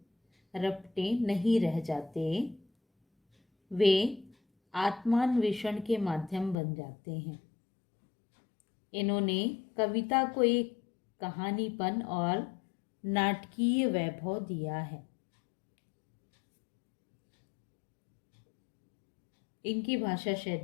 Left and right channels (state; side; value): drops out; right; at 6.6 s